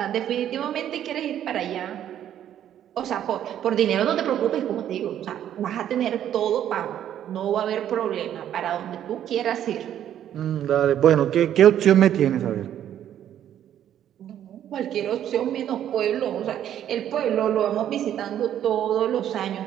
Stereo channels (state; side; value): quieter; left; 10.7 dB